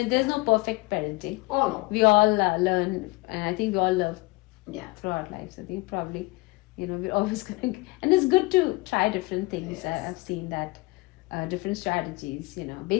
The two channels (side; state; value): right; quieter; 24.0 dB